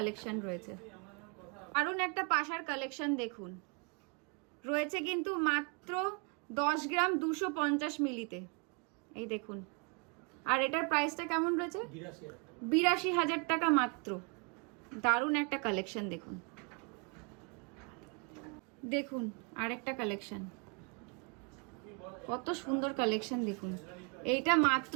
রয়েছে, দারুণ একটা পাশার কালেকশন দেখুন, রয়েছে কিন্তু মাত্র 10 গ্রাম 250 মিলিতে। এই দেখুন, আর এটার প্রাইসটা কেমন রয়েছে, 82,000 টাকা মাত্র। দারুণ একটা কালেকশন দেখুন। দেখুন আরেকটা কালেকশন, কত সুন্দর কালেকশন দেখুন, এইটা মাত্র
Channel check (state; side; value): quieter; left; 34.4 dB